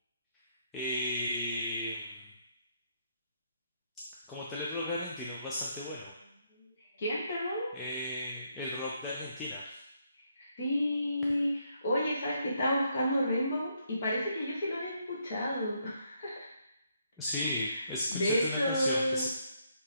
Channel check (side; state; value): both; inverted; correlation -0.74